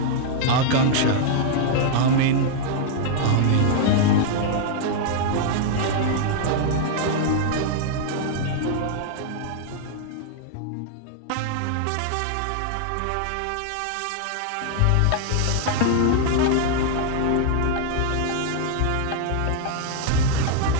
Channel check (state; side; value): different; both; correlation 0.00